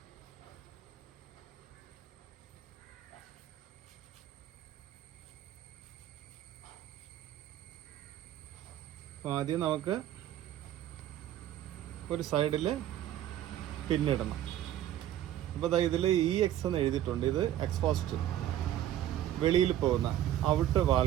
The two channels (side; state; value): left; quieter; 12.2 dB